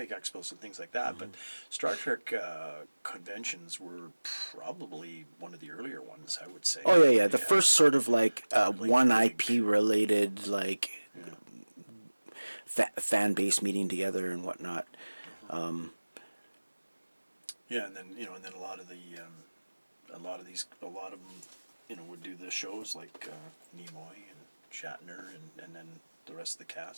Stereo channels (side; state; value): both; inverted; correlation -1.00